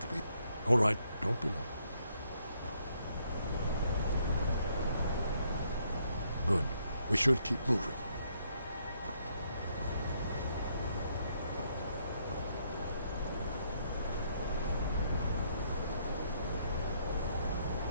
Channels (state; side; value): inverted; both; correlation -0.72